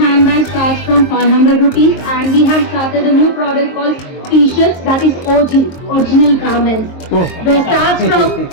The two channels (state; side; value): late; right; 22 ms